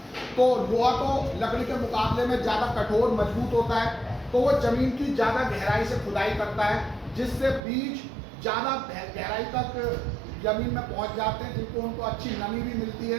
तो लोहा तो लकड़ी के मुकाबले में ज्यादा कठोर मजबूत होता है, तो वो जमीन की ज्यादा गहराई से खुदाई करता है जिससे बीज ज्यादा गहराई तक जमीन में पहुंच जाते हैं, जिनको उनको अच्छी नमी भी मिलती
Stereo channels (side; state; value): left; drops out; at 7.6 s